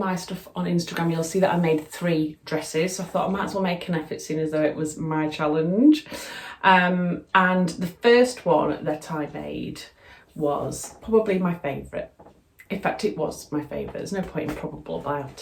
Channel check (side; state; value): both; identical; correlation 1.00